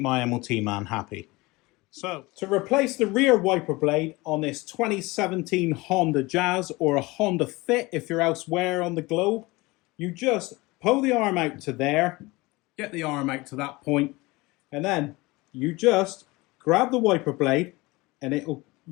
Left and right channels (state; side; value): quieter; right; 22.5 dB